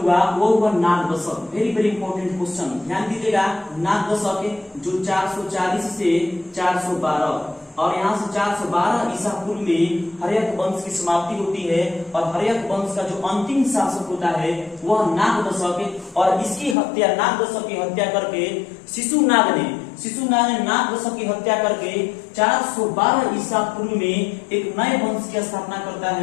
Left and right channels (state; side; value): drops out; right; at 16.8 s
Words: वो हुआ Nagdashak. Very very important question, ध्यान दीजिएगा। नागदशक जो 440 से 412 और यहाँ से 412 ईसा पूर्व में हर्यक वंश की समाप्ति होती है। और हर्यक वंश का जो अंतिम शासक होता है वह नागदशक। और इसकी हत्या, नागदशक की हत्या करके शिशुनाग ने नागदशक की हत्या करके 412 ईसा पूर्व में एक नए वंश की स्थापना करता